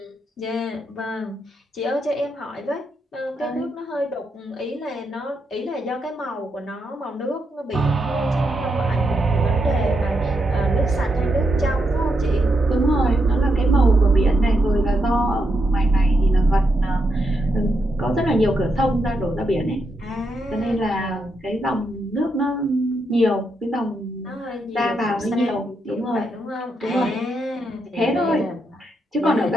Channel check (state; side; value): normal; both; correlation 0.82